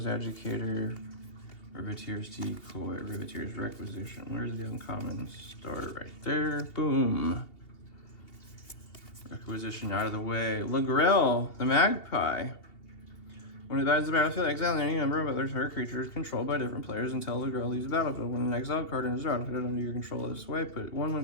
Educator, Riveteer's Decoy, Riveteer's Requisition. Where's the uncommon? Start right there. Boom. Requisition out of the way. Lagrel, the Magpie. When it dies the battlefield, exile any number of other target creatures controlled by different players until Lagrel leaves the battlefield. When an exiled card enters the battlefield under your control this way, put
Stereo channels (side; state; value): right; late; 2.8 ms